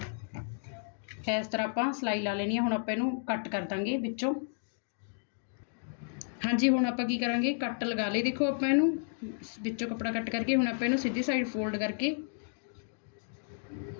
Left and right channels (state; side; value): silent; right; digital silence